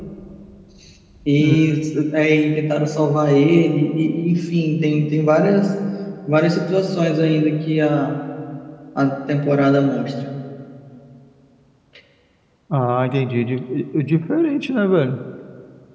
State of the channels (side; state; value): both; identical; correlation 1.00